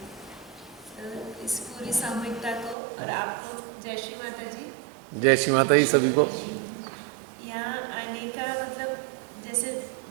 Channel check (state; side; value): drops out; left; at 2.8 s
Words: इस पूरी सामूहिकता को और आपको जय श्री माता जी। जय श्री माता जी सभी को। यहाँ आने का मतलब, जैसे